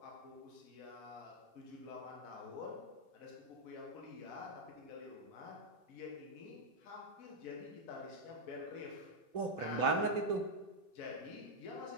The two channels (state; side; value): late; left; 3.0 ms